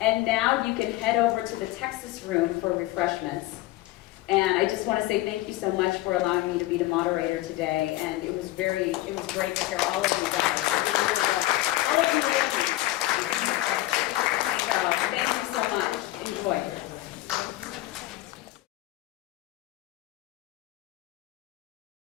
now you can head over to the Texas room for refreshments. And I just want to say thank you so much for allowing me to be the moderator today. And it was great to hear all of you guys. It really was.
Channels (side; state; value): right; quieter; 17.3 dB